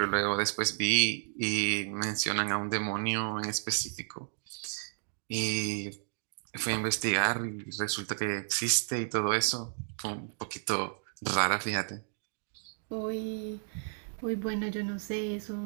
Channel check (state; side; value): silent; left; digital silence